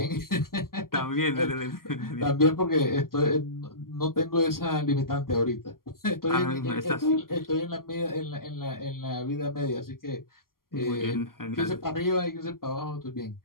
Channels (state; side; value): late; right; 0.92 ms